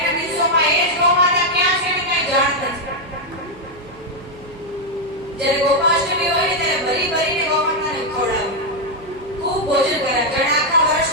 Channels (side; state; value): right; noise; hum, 23 dB below the sound